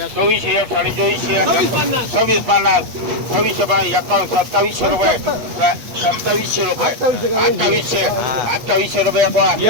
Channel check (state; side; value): late; left; 8.4 ms